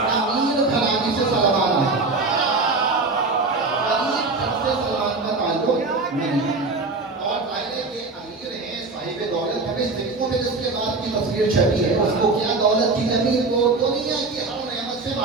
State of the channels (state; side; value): quieter; left; 3.6 dB